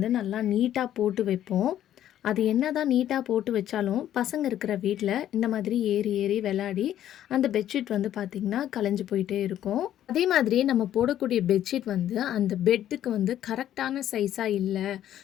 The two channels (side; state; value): right; quieter; 11.6 dB